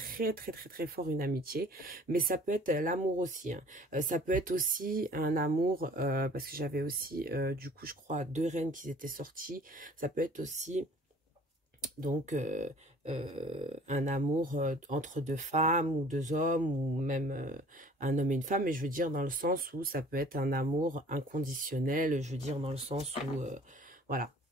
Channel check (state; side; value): normal; both; correlation 0.51